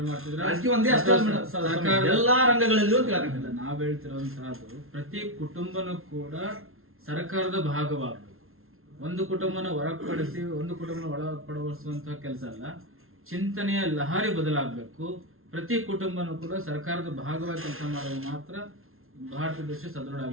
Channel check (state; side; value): late; left; 0.62 ms